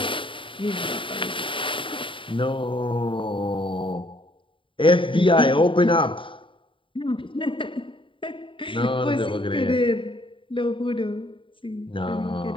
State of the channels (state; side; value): late; right; 0.25 ms